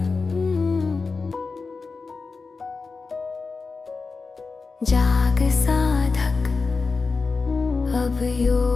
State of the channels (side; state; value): right; quieter; 4.3 dB